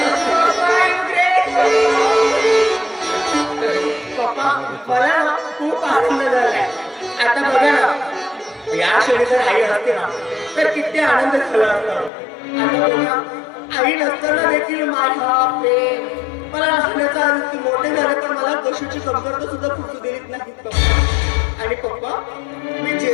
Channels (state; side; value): drops out; right; at 12.1 s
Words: पप्पा, मला ना खूप आनंद झालाय. आता बघा ना, या क्षणी जर आई असते ना तर किती आनंद झाला असता. आता बघा, आई नसताना देखील माझा प्रेम मला लहानाचा आनंद, मोठे झाले पण मला कशाची कमतरता सुद्धा फुटू देत नाही पप्पा. आणि पप्पा, मी